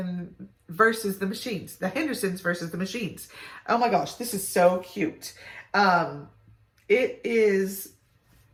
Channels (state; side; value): identical; both; correlation 1.00